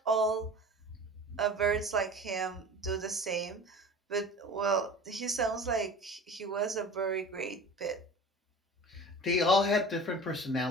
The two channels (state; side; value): normal; both; correlation 0.39